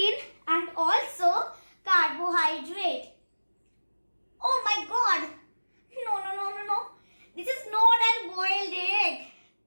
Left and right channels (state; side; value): inverted; both; correlation -1.00